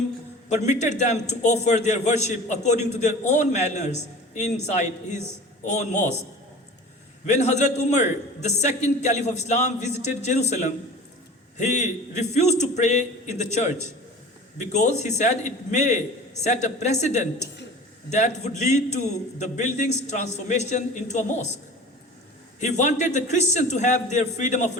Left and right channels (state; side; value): normal; both; correlation 0.39